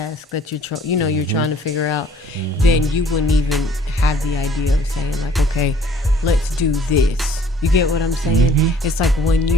that you're trying to figure out, then you wouldn't even have the idea of saying, like, okay, let's do this. You get what I'm saying? It's like when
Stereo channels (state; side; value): normal; both; correlation 0.56